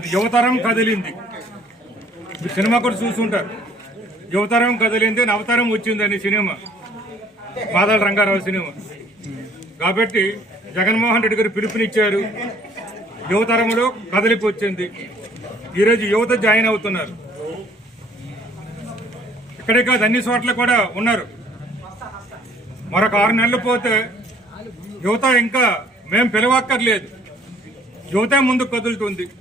యువతరం కదిలింది. సినిమా కూడా చూసుంటారు. యువతరం కదిలింది, నవతరం వచ్చిందని సినిమా, బాదల రంగారావు సినిమా. కాబట్టి జగన్మోహన్ రెడ్డి గారు పిలుపునిచ్చారు. యువతరంలో కదలికి వచ్చింది. ఈరోజు యువత జాయిన్ అవుతున్నారు. ఇక్కడే కాదు, అన్ని చోట్ల కూడా ఉన్నారు. మరొక 6 నెలలు పోతే యువత ఇంకా మేము పిలవక్కర్లేదు. యువత ముందుకు కదులుతుంది,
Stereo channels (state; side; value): normal; both; correlation 0.58